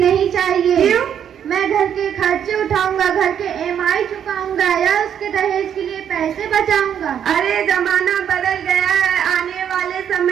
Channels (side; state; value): left; quieter; 8.9 dB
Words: चाहिए। क्यों? मैं घर के खर्चे उठाऊंगा, घर के EMI चुकाऊंगा या उसके दहेज के लिए पैसे बचाऊंगा। अरे जमाना बदल गया है, आने वाले